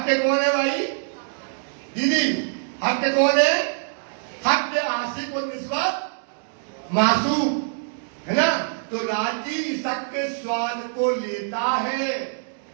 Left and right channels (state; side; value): silent; left; digital silence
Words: के कौन है भाई? दीदी हक के कौन है? हक के आशिक और निस्बत मासूक है ना। तो राजी इश्क के स्वाद को लेता है।